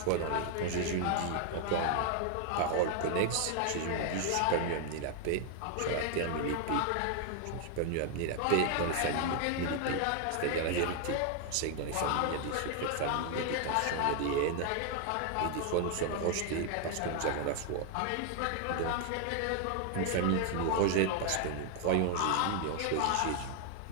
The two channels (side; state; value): both; different; correlation 0.00